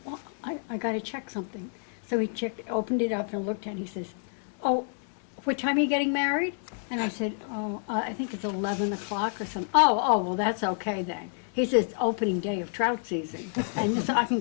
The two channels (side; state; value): right; silent; 59 dB below the other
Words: well, I got to check something. So he opened it up and looked at it, and he says, oh, what time are you getting married? And I said, I think it's 11 o'clock or something. Oh, well, that's okay then. He says, it's opening day of trout season, and so I can